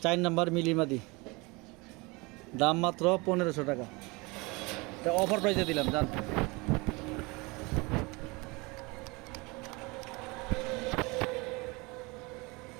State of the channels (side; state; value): left; quieter; 25.9 dB